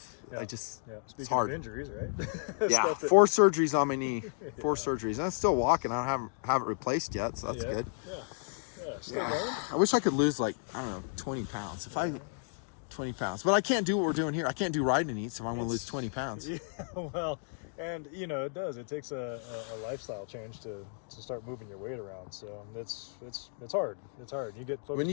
It's hard. Of injuries, right? 4 surgeries on my knee. 4 surgeries. And I'm still walking. I haven't replaced yet, so that's good. I wish I could lose 20 pounds. 20 pounds. But I can't do what we're doing here. I can't do riding eats if I want to lose 20 pounds. Yeah, well, and it does. It takes a lifestyle change to start moving your weight around. So it's hard. It's hard. You get when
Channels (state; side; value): silent; right; 56 dB below the other